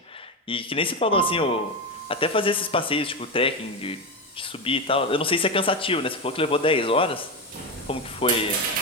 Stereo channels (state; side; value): normal; both; correlation 0.14